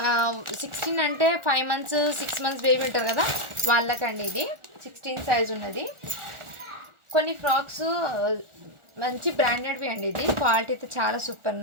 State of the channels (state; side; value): late; left; 1.4 ms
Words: అంటే 5 మంత్స్ 6 మంత్స్ బేబీ ఉంటారు కదా వాళ్ళకండి. ఇది 16 సైజ్ ఉన్నది. కొన్ని ఫ్రాక్స్ మంచి బ్రాండెడ్వి అండి, ఇది క్వాలిటీ అయితే చాలా సూపర్